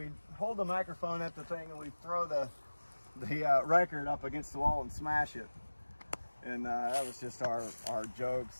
hold the microphone at the thing and we'd throw the record up against the wall and smash it. And that was just our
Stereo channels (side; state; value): both; inverted; correlation -1.00